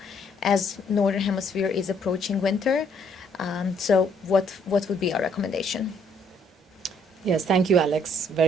as Northern Hemisphere is approaching winter. So what would be our recommendation? Yes, thank you, Alex,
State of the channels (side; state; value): both; normal; correlation 0.66